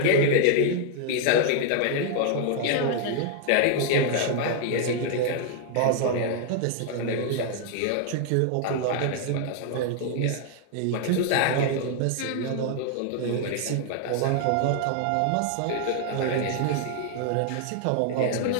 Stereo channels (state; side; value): different; both; correlation 0.00